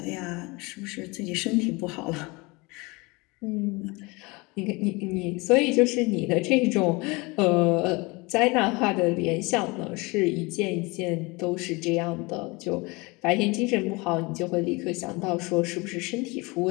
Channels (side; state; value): right; quieter; 25.7 dB